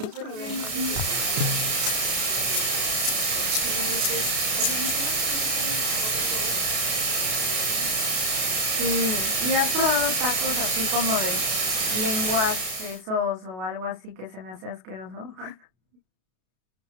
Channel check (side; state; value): left; late; 32 ms